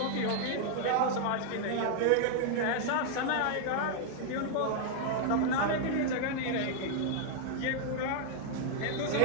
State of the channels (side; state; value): both; different; correlation 0.00